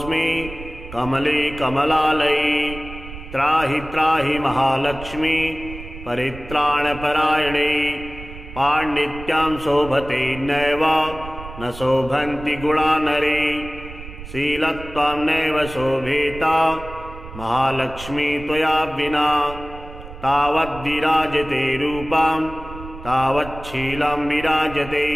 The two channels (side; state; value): right; noise; rumble, 13 dB below the sound